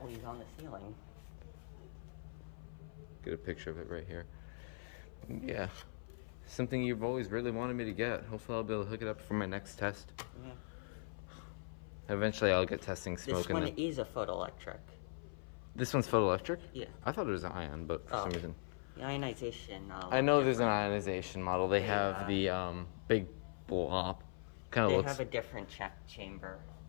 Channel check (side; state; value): right; silent; 51 dB below the other